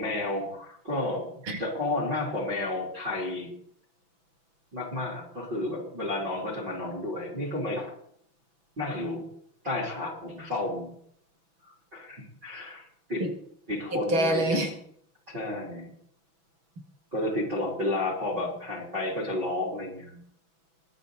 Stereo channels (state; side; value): late; left; 6.0 ms